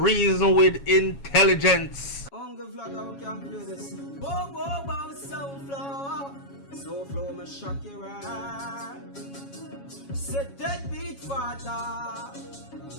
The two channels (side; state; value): right; late; 7.2 ms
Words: with intelligence. Uncle Vlogger, we can play this. Whoa, whoa, whoa, SouFlo. SouFlo, me shock you right. Set that beat, father.